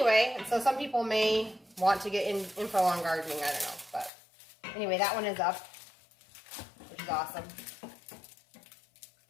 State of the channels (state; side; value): drops out; right; at 4.1 s